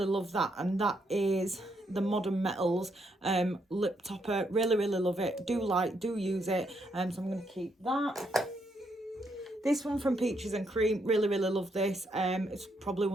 that, and that is the Modern Metals lip topper. Really love it. Do use it. So I'm going to keep that. This one from Peaches and Cream, really love this. It's probably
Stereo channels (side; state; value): both; normal; correlation 0.76